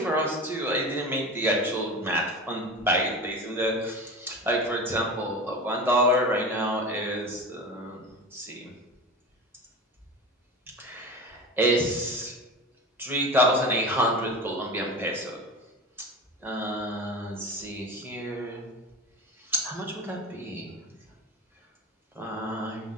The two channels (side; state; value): both; normal; correlation 0.30